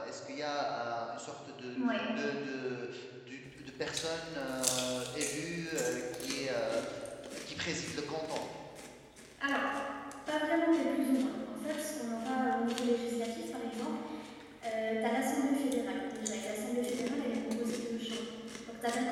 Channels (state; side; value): identical; both; correlation 1.00